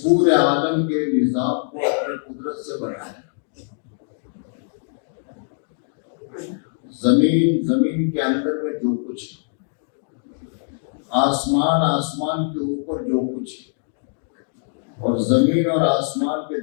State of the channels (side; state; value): right; silent; digital silence